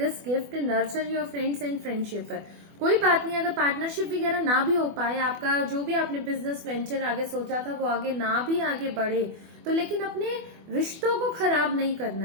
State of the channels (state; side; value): late; left; 24 ms